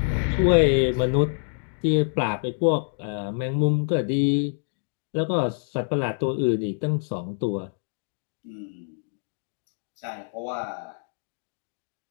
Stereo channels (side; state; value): right; silent; digital silence